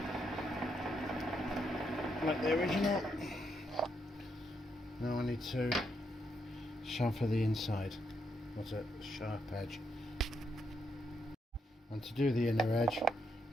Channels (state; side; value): normal; both; correlation 0.79